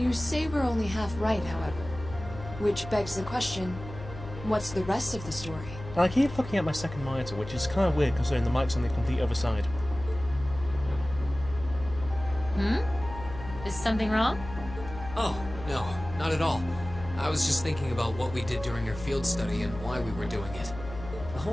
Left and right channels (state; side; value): noise; left; hum, 12 dB below the sound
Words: say we're only half right, however. Which begs the question, what's the rest of the story? And I keep looking at my second monitor, which is kind of weird considering the mic's on the complete other side. Is something wrong? Oh, no, not at all. I was just thinking about what we did during our field study and why we were doing it. The